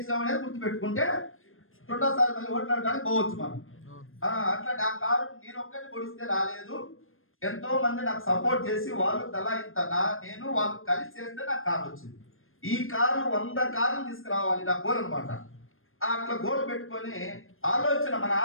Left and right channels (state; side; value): late; right; 0.60 ms